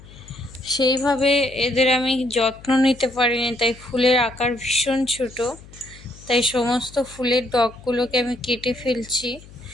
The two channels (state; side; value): noise; left; hum, 20 dB below the sound